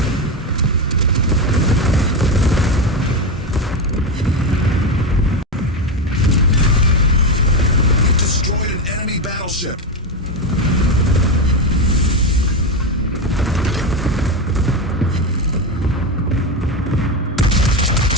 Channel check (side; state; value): both; normal; correlation 0.13